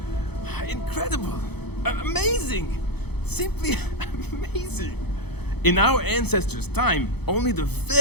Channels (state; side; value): late; right; 0.98 ms